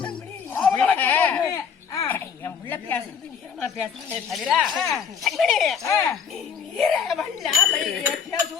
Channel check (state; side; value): quieter; right; 6.9 dB